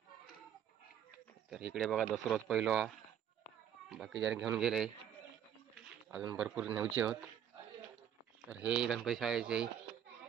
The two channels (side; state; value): left; quieter; 9.4 dB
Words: तर इकडे बघा दसरोज पहिलो बाकी जण घेऊन गेले, अजून भरपूर न्यायचे होत. तर हे गणपती शाळेचे